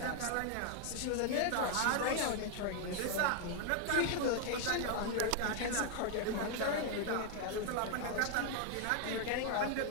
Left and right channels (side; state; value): both; different; correlation 0.00